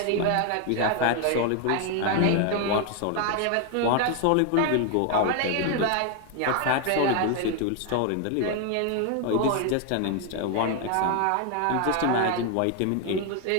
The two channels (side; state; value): both; different; correlation 0.01